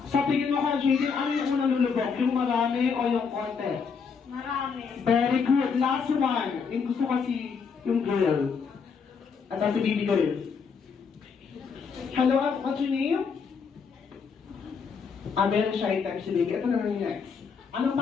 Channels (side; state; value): right; quieter; 5.8 dB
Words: Sa tingin mo, Kuya Jaden, ano yung unang lulubog? Yung marami o yung konti? Marami. Very good. Last one. Yung gusto kasi yung girl. At si baby girl. Hello, what's your name? Very shy type si baby. Ito na lang yung next. Anong